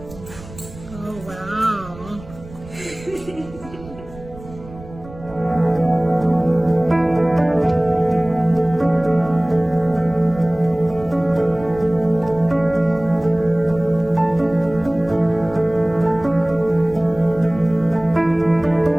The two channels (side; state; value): right; noise; rumble, 18 dB below the sound